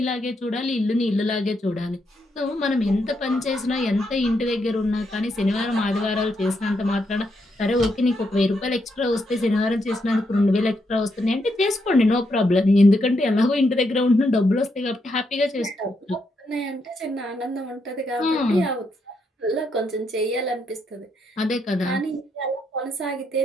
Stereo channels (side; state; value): both; normal; correlation 0.79